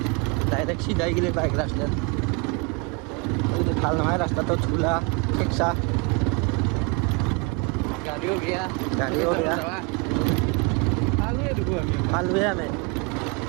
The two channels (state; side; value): quieter; left; 29.7 dB